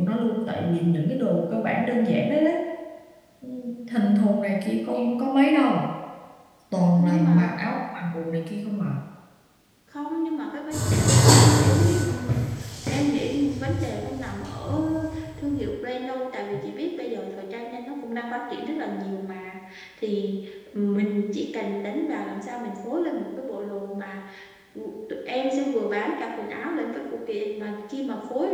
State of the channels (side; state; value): both; identical; correlation 1.00